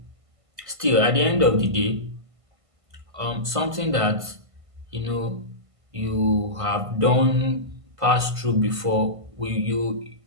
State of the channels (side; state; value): left; late; 1.5 ms